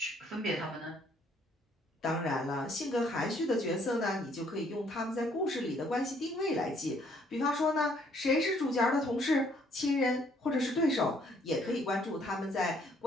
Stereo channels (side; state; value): both; normal; correlation 0.65